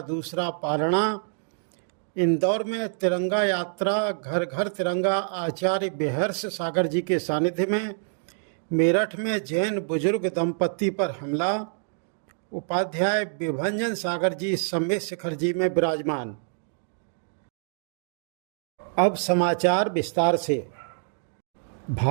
दूसरा पारणा, इंदौर में तिरंगा यात्रा घर घर तिरंगा आचार्य बेहर्ष सागर जी के सानिध्य में, मेरठ में जैन बुजुर्ग दंपति पर हमला, उपाध्याय विभंजन सागर जी समेत शिखर जी में विराजमान। अब समाचार विस्तार से।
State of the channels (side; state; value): left; silent; digital silence